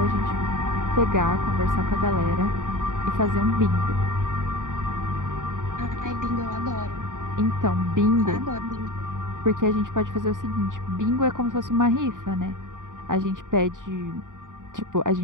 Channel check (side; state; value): left; late; 0.88 ms